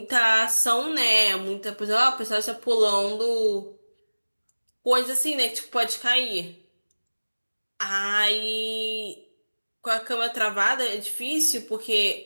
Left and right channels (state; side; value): inverted; both; correlation -1.00